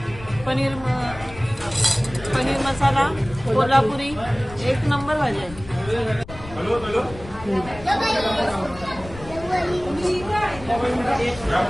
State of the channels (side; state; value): left; noise; rumble, 15 dB below the sound